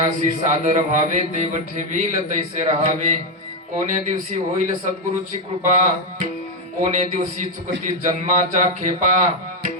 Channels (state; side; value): normal; both; correlation 0.04